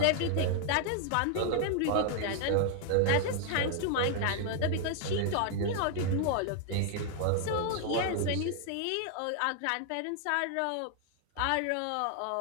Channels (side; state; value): both; different; correlation 0.00